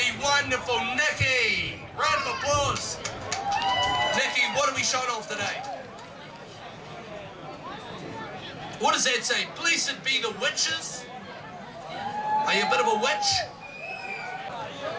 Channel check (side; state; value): both; identical; correlation 1.00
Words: wonderful Nikki. Round of applause. Nikki, what are we showing off today? What does that say? Blessed be the witches. Are you a bit of a witch?